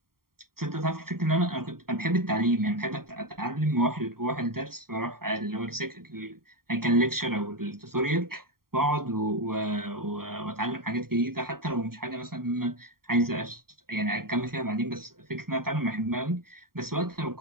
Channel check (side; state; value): left; late; 0.93 ms